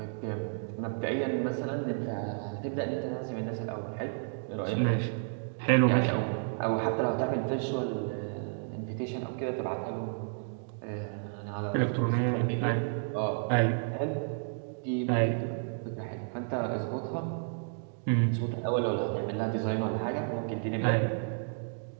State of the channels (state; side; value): silent; left; digital silence